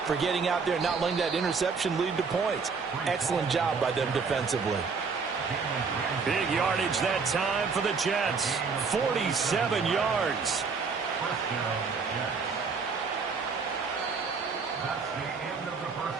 for getting out there and not letting that interception lead to points. Excellent job by them defensively. Big yardage that time for the Jets. 47 yards.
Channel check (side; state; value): left; quieter; 5.1 dB